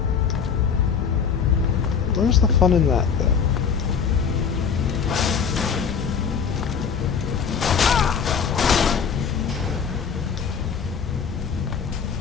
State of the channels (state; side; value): quieter; right; 6.7 dB